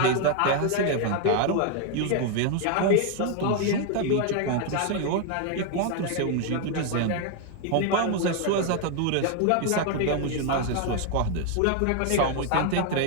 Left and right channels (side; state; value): both; different; correlation 0.00